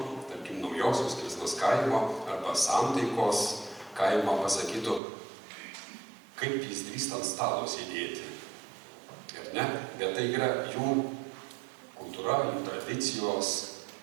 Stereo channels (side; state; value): left; drops out; at 5.0 s